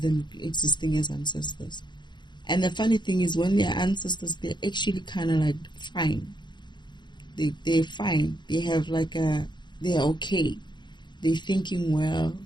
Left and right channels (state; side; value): late; right; 0.22 ms